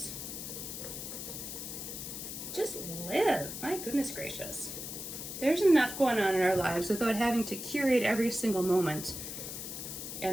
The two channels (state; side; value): noise; left; hiss, 7 dB below the sound